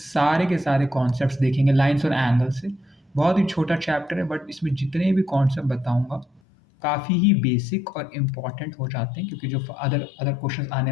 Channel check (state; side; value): drops out; right; at 6.4 s